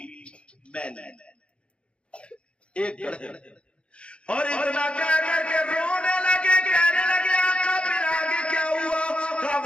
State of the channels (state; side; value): late; right; 0.058 ms